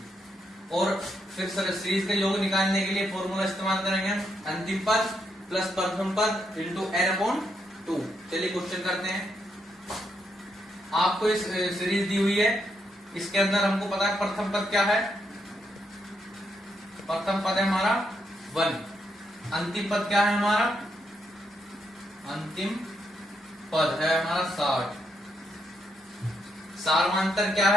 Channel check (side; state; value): both; normal; correlation 0.79